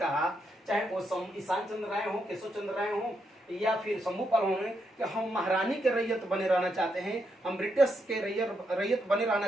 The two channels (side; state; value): both; normal; correlation 0.80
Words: चाहे वो ईशान चंद्र राय हो, केशव चंद्र राय हो या फिर शंभूपाल हो, कि हम महारानी के रैयत बने रहना चाहते हैं, हम ब्रिटिश के रैयत बने रहना